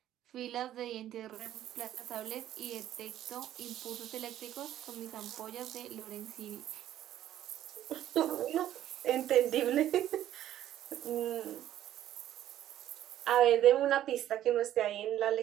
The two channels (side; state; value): left; quieter; 12.2 dB